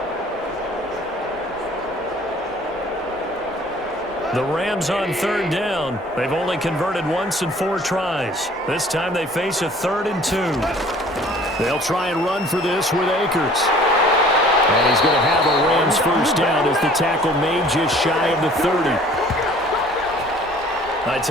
The Rams on 3rd down. They've only converted once in 4 tries. This time they face a 3rd and 2. They'll try and run for this with Akers. And he's going to have a Rams first down as the tackle made just shy of the 30. I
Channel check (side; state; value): both; normal; correlation 0.52